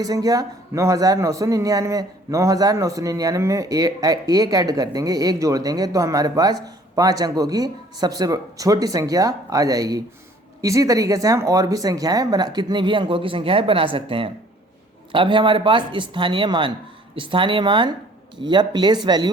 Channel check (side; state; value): both; normal; correlation 0.56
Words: संख्या 9999। 9999 में एक ऐड कर देंगे, एक जोड़ देंगे तो हमारे पास 5 अंकों की सबसे छोटी संख्या आ जाएगी। इसी तरीके से हम और भी कितनी भी अंकों की संख्याएं बना सकते हैं। अब है हमारे पास स्थानीय मान। स्थानीय मान या प्लेस